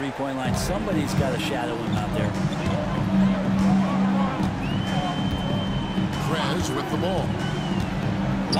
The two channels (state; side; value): identical; both; correlation 1.00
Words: line. Somebody's got to shadow him out there. Prez with the ball.